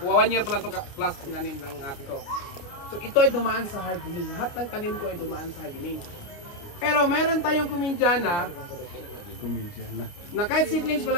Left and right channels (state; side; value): late; right; 29 ms